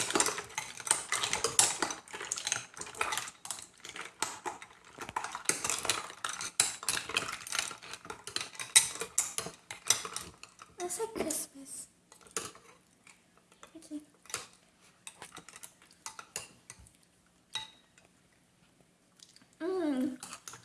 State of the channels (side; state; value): both; identical; correlation 1.00